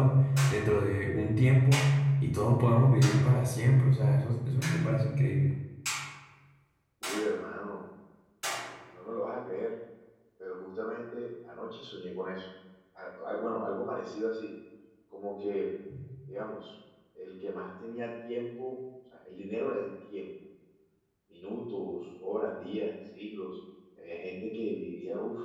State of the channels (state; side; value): identical; both; correlation 1.00